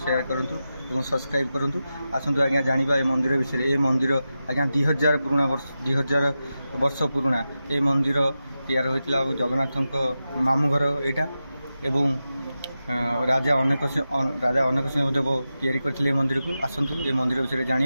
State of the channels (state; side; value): inverted; both; correlation -0.92